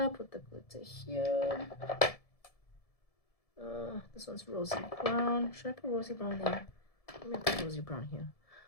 Put the glitter here. This one's rosy brown. Should I put rosy brown there? Let me put rosy brown here.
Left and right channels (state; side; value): late; right; 1.7 ms